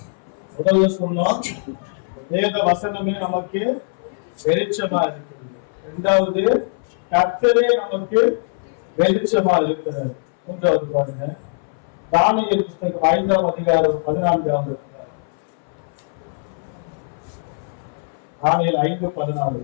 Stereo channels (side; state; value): right; silent; 62 dB below the other